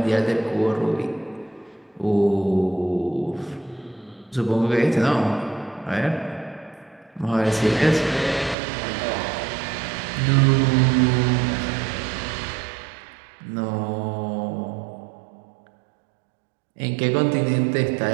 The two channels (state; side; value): drops out; left; at 8.6 s